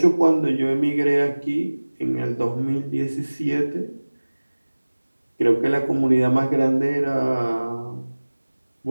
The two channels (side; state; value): both; inverted; correlation -1.00